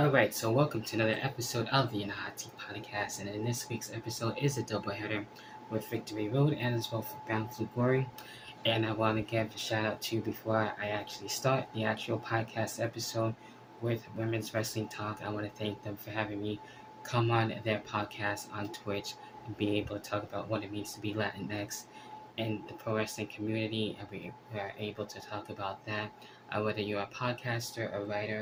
so welcome to another episode of the Nahati Podcast, and in this week's episode is a doubleheader with Victory Road and as well for Bound for Glory. And I want to give a shout out to before I actually start the actual podcast episode with Women's Wrestling Talk. I want to thank them for having me come on their podcast on Twitch and be able to talk about what it means to be Latinx in the pro wrestling community, and we are able to talk about that. Whether you're a podcaster, a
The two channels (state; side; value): identical; both; correlation 1.00